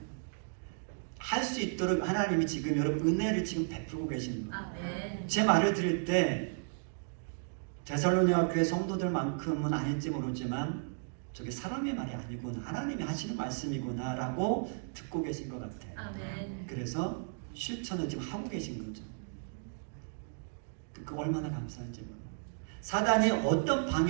할 수 있도록 하나님이 지금 여러분 은혜를 지금 베풀고 계시는 거예요. 제 말을 들을 때 데살로니가 교회 성도들만큼은 아닐지 모르지만 저게 사람의 말이 아니구나 하나님이 하시는 말씀이구나 라고 듣고 계신 것 같아요. 그래서 실천을 지금 하고 계신 거죠. 그 얼마나 감사한지 몰라요. 사단이 어떤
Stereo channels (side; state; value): left; silent; digital silence